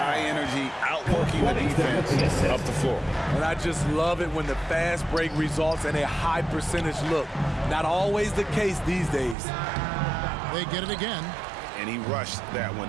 energy, outworking the defense up the floor. And I just love it when the fast break results in a high percentage look. Not always the case these days. They get it again. And he rushed that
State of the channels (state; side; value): drops out; left; at 9.3 s